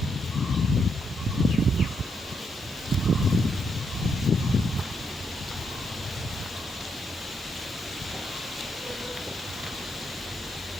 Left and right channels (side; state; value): both; normal; correlation 0.78